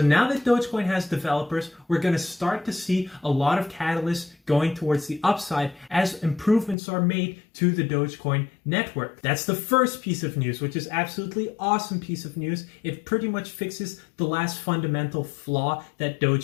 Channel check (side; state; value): right; drops out; at 6.8 s